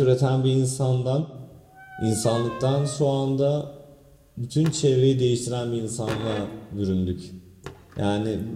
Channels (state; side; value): identical; both; correlation 1.00